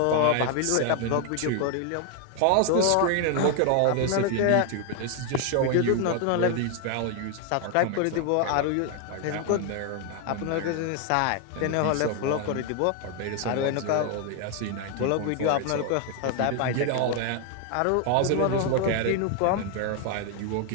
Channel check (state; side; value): different; both; correlation 0.01